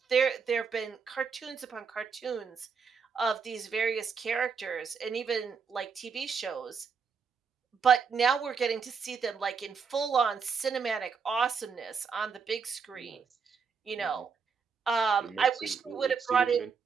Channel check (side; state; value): left; quieter; 5.8 dB